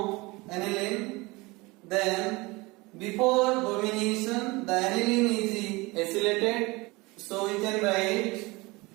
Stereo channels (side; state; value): left; quieter; 23.6 dB